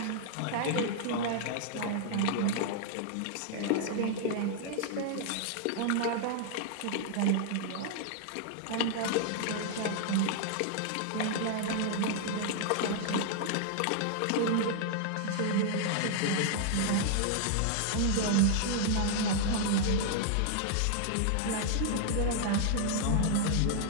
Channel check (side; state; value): both; different; correlation -0.01